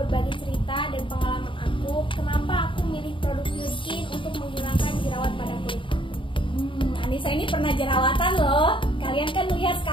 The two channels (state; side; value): late; right; 0.25 ms